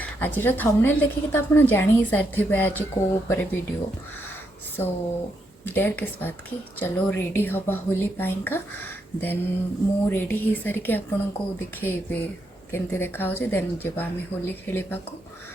आज थंबनेल देखिए तो आप जानी ही सारी आज को ऊपर वीडियो सो डेढ़ किस बात की चलो रेडी हवा होली पाइंका देन मु रेडी हो सारिके आपन को देखिए केमती देखा देन जब आम होली खेलवा को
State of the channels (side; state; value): both; normal; correlation 0.79